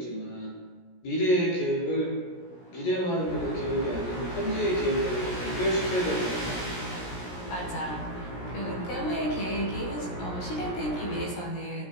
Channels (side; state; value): right; late; 17 ms